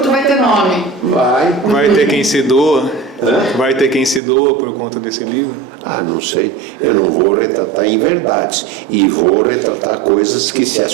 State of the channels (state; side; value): drops out; left; at 4.2 s